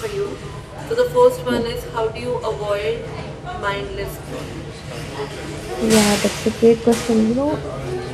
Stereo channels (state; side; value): identical; both; correlation 1.00